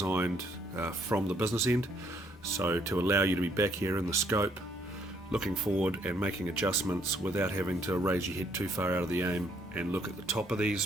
from the business end, so to allow you to be back here in the scope, looking forward and making adjustments without having to raise your head too far out of the aim and look at the top of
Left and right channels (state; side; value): normal; both; correlation 0.68